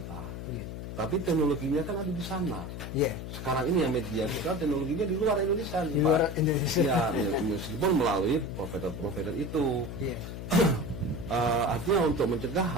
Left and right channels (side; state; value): left; noise; hum, 8 dB below the sound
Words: tapi teknologinya kan ada di sana. Sekarang ini yang media sosial teknologinya di luar Indonesia, ya meskipun melalui provider itu. Artinya untuk mencegah